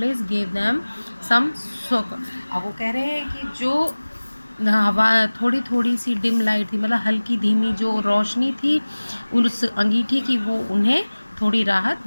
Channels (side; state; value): both; inverted; correlation -1.00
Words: gave them some soak. अब वो कह रहे हैं कि जो हवा थोड़ी थोड़ी सी डिम लाइट थी, मतलब हल्की धीमी जो रोशनी थी उस अंगीठी की, वो उन्हें थोड़ी राहत